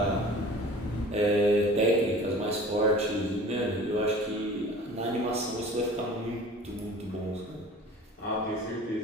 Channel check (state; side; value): normal; both; correlation 0.43